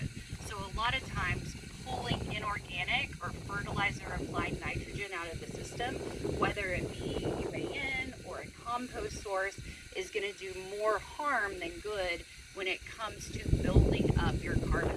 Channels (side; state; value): both; identical; correlation 1.00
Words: So a lot of times pulling inorganic or fertilizer applied nitrogen out of the system, whether it be UAN or a compost source, is going to do more harm than good when it comes to building up your